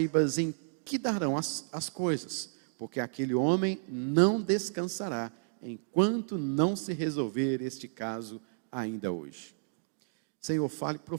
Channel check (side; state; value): left; silent; digital silence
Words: em que darão as coisas, porque aquele homem não descansará, enquanto não se resolver este caso ainda hoje. Senhor, fale